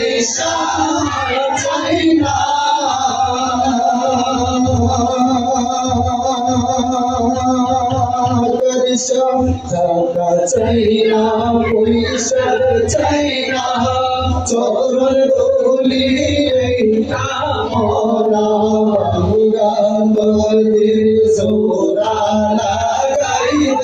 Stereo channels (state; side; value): identical; both; correlation 1.00